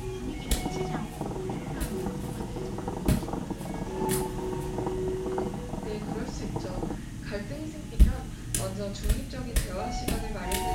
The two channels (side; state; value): both; identical; correlation 1.00